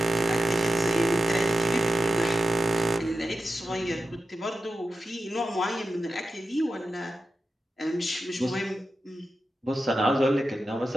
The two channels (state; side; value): normal; both; correlation 0.91